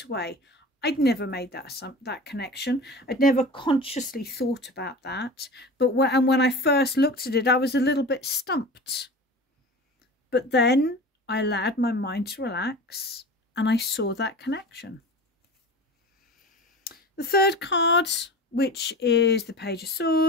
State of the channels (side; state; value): both; normal; correlation 0.34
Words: away, I'd never made that connection. I'd never consciously thought about that. But when I first looked at it, I was a little bit stumped. But then I allowed my mind to relax and I saw that connection. The third card, which is the Page of